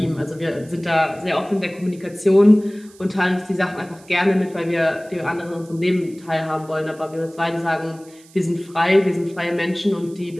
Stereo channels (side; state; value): right; noise; hiss, 26 dB below the sound